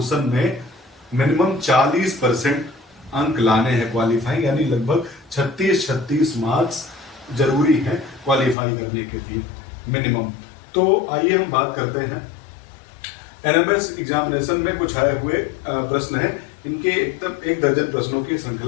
में मिनिमम 40% अंक लाने हैं क्वालिफाई, यानी लगभग 36 मार्क्स जरूरी हैं क्वालिफाई करने के लिए मिनिमम। तो आइए हम बात करते हैं एनएमएस एग्जामिनेशन में कुछ आए हुए प्रश्न हैं। इनके एकदम 1 दर्जन प्रश्नों की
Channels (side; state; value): right; drops out; at 8.6 s